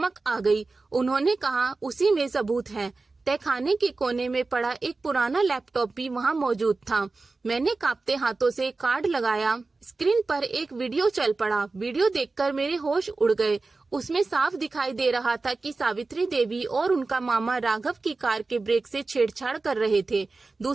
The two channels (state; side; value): quieter; left; 3.7 dB